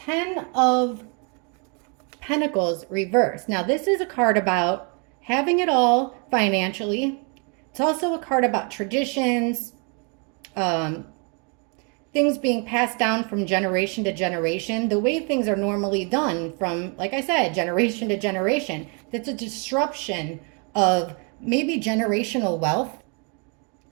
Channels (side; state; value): left; quieter; 36.0 dB